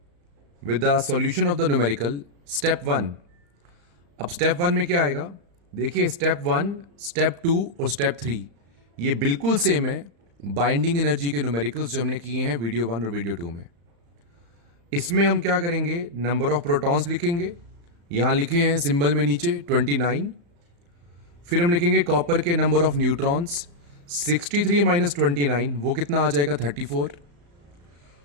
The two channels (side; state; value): left; late; 35 ms